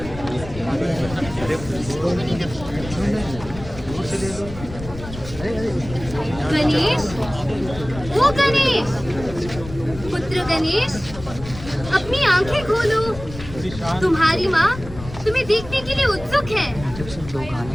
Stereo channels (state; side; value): noise; left; rumble, 13 dB below the sound